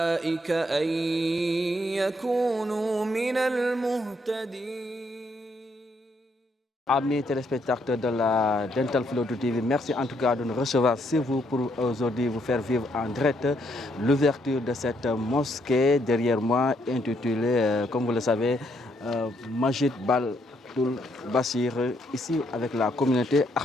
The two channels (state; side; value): normal; both; correlation 0.73